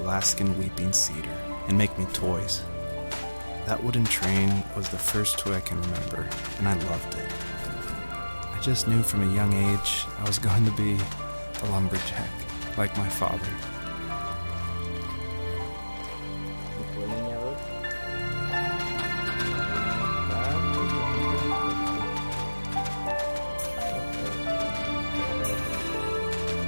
weeping cedar and make me toys. That wooden train was the first toy I can remember, and I loved it. I just knew from a young age I was going to be a lumberjack, like my father.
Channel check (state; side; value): inverted; both; correlation -1.00